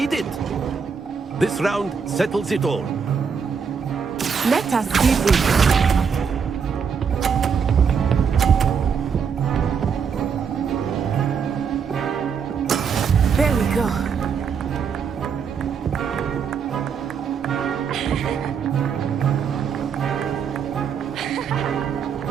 it. This round settles it all. Let us see this. There we go.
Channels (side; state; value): left; quieter; 6.4 dB